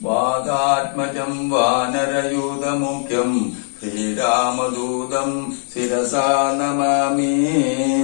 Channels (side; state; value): right; silent; 66 dB below the other